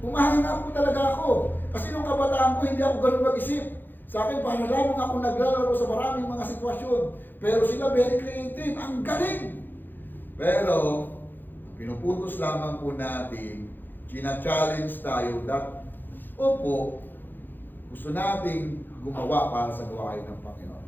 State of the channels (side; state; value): right; late; 0.091 ms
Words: Umahanga po talaga ako. Kasi nung kabataan ko, hindi ako ganun mag-isip. Sa akin, paano lamang ako naglalaro sa maraming mga sitwasyon. Pero sila very creative, ang galing. Pero, pinuputos lamang po natin, china-challenge tayo that, opo, gusto nating gumawa para sa gawain ng Panginoon.